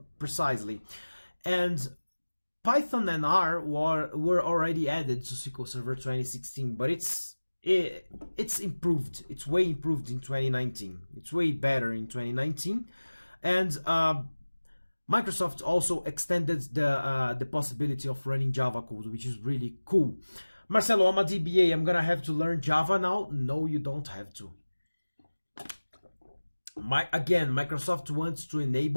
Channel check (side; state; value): both; inverted; correlation -1.00